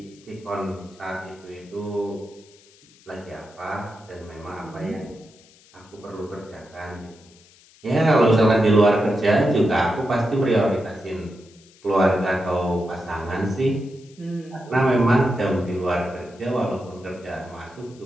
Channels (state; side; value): noise; left; hiss, 27 dB below the sound